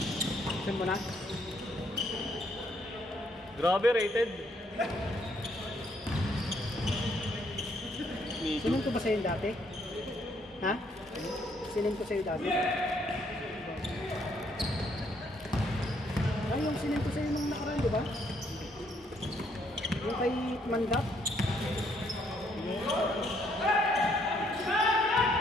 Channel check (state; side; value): normal; both; correlation 0.70